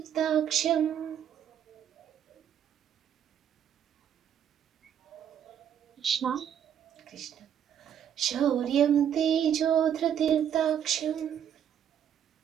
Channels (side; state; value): left; quieter; 9.2 dB